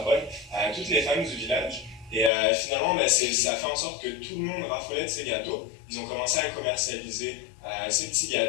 bonne à toutes les femmes du village. Et finalement, ça a fait en sorte que tout le monde raffolait de ces gâteaux. Ils ont commencé à commercialiser ces petits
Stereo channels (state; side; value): drops out; right; at 2.3 s